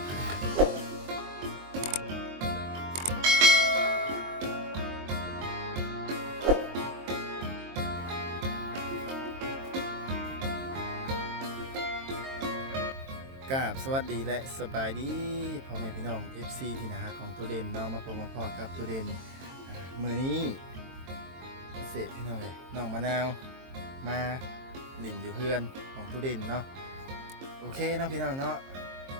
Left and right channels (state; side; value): late; left; 22 ms